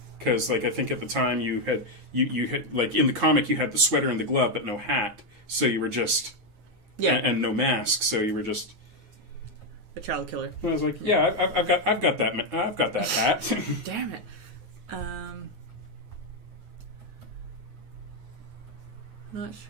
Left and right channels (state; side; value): late; left; 9.4 ms